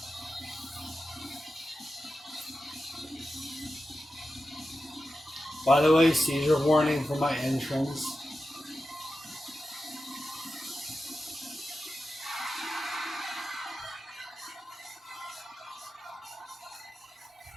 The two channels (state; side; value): normal; both; correlation 0.92